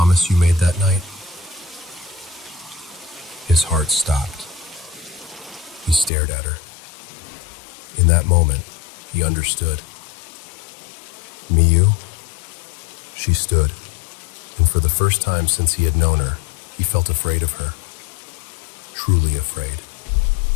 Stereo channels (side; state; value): right; drops out; at 6.1 s